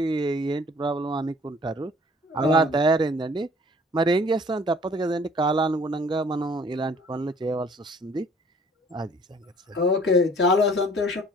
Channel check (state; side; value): normal; both; correlation 0.54